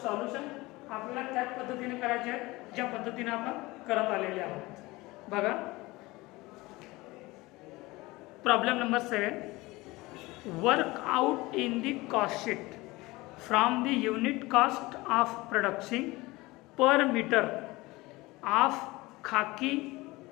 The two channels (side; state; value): right; quieter; 21.3 dB